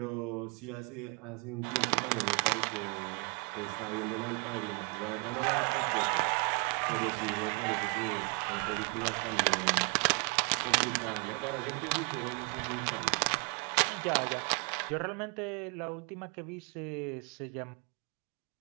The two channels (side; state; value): left; quieter; 34.3 dB